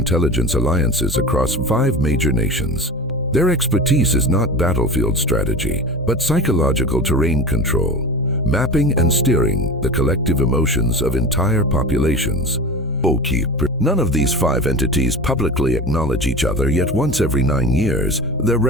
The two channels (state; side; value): normal; both; correlation 0.32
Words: alliances across 5 major nations. Their expertise is not battlefield strategy, but psychological terrain control, mapping and steering the collective emotions of entire populations. None of these 5 entities publicly acknowledge each other, yet once every 9 years, their